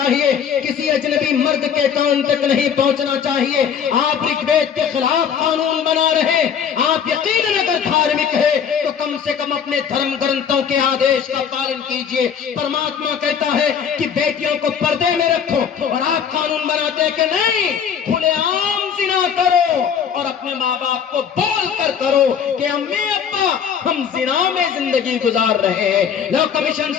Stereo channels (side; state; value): right; quieter; 7.6 dB